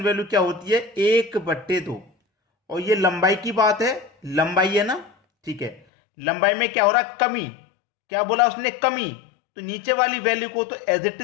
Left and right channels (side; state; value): right; drops out; at 5.8 s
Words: वैल्यू क्या होती है? 1/2। और ये लंबाई की बात है, लंबाई है ना। ठीक है, लंबाई में क्या हो रहा है? कमी। क्या बोला उसने? कमी। तो नीचे वाली वैल्यू को तो एज इट